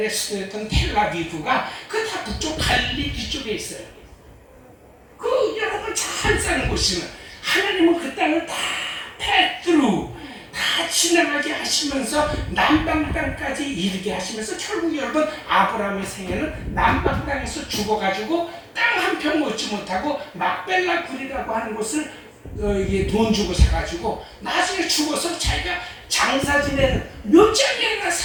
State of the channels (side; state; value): both; identical; correlation 1.00